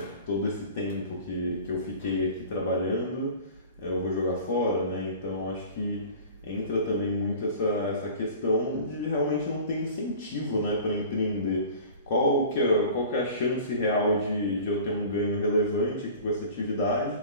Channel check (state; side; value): inverted; both; correlation -0.42